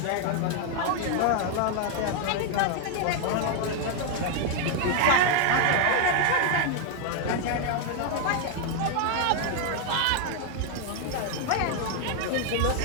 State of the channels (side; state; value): both; different; correlation 0.00